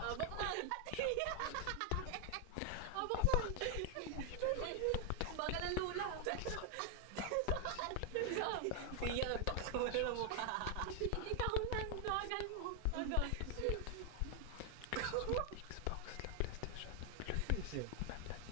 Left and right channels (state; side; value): different; both; correlation 0.00